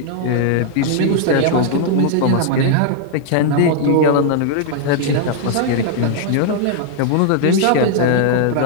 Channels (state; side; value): different; both; correlation -0.01